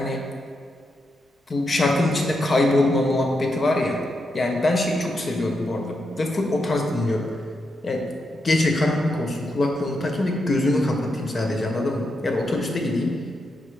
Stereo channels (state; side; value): normal; both; correlation 0.84